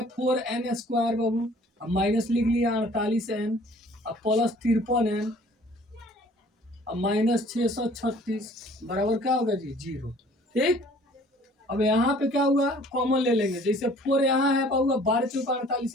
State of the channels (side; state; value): both; normal; correlation 0.54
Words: 4n स्क्वायर बाबू, अब माइनस लिख लिया 48n अब प्लस 53n अब माइनस 636 बराबर क्या होगा जी 0। ठीक, अब यहाँ पे क्या हुआ कॉमन ले लेंगे, जैसे 4 यहाँ है पाऊंगा 12 चौका